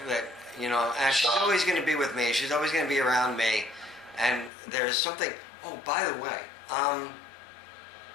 she's always going to be with me. She's always going to be around me. And there's something. Oh, by the way,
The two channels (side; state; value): right; drops out; at 4.5 s